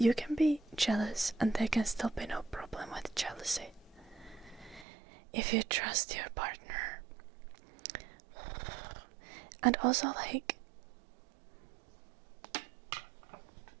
can be jealous and there can still be no problem with jealousy. If you trust your partner. And also, like,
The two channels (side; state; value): left; drops out; at 4.9 s